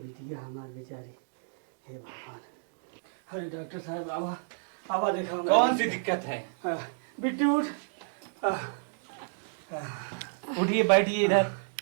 हमार बेचारी। हे भगवान। अरे डॉक्टर साहब आवा आवा, देखा कौन सी दिक्कत है? बिट्टी उठ। उठिए बैठिए इधर।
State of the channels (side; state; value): left; silent; digital silence